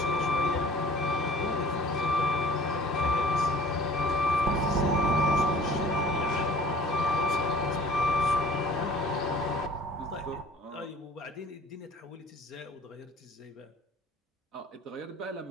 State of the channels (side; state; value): both; normal; correlation 0.49